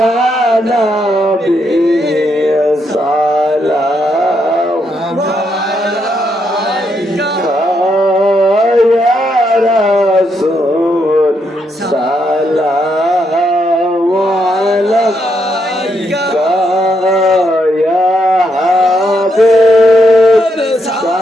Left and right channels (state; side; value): normal; both; correlation 0.78